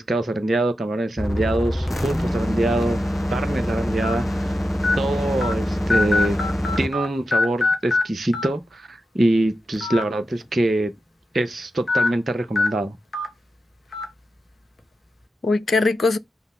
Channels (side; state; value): both; normal; correlation 0.90